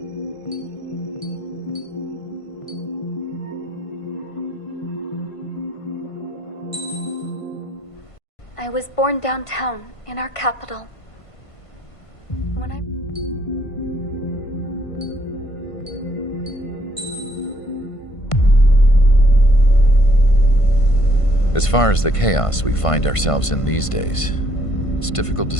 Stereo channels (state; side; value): late; right; 1.5 ms